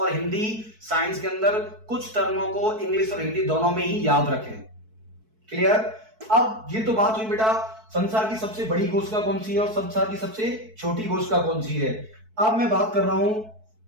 हिंदी साइंस के अंदर कुछ टर्मों को इंग्लिश और हिंदी दोनों में ही याद रखें। क्लियर? अब ये तो बात हुई बेटा संसार की सबसे बड़ी कोशिका कौन सी है और संसार की सबसे छोटी कोशिका कौन सी है। अब मैं बात कर रहा हूं,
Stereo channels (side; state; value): left; late; 4.6 ms